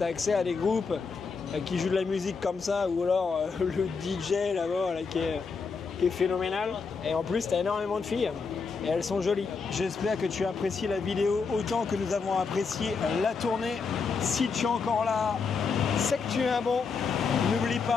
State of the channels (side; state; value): right; quieter; 5.1 dB